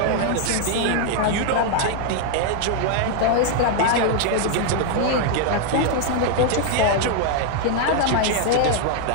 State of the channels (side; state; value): both; different; correlation 0.00